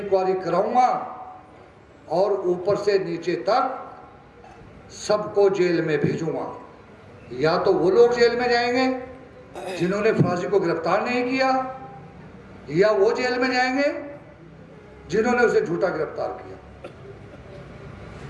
कराऊंगा और ऊपर से नीचे तक सबको जेल में भेजूंगा। या तो वो लोग जेल में जाएंगे जिन्होंने फराजी को गिरफ्तार नहीं किया, या वो जेल में जाएंगे जिन्होंने उसे झूठा गिरफ्तार किया।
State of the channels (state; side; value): identical; both; correlation 1.00